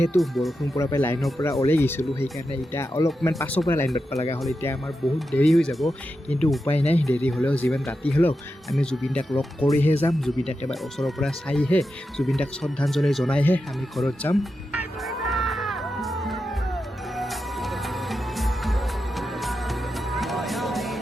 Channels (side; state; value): both; normal; correlation 0.89